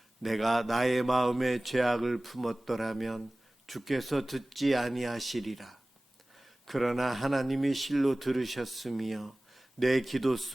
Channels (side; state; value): both; normal; correlation 0.98